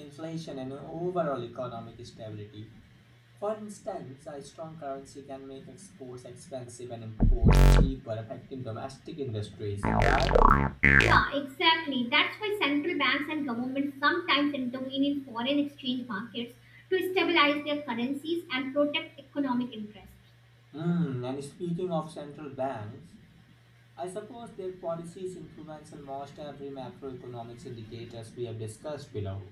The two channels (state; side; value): identical; both; correlation 1.00